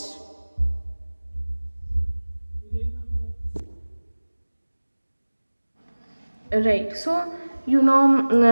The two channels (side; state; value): both; inverted; correlation -1.00